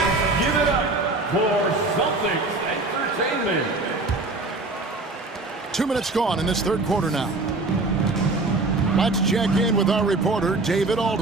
Give it up for Celtics Entertainment. 2 minutes gone in this third quarter now. Let's check in with our reporter, David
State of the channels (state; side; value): quieter; left; 3.2 dB